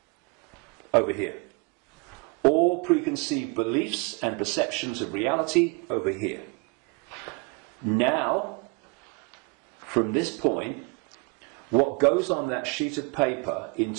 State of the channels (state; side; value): quieter; left; 30.8 dB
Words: over here. All preconceived beliefs and perceptions of reality over here. Now, from this point, what goes on that sheet of paper in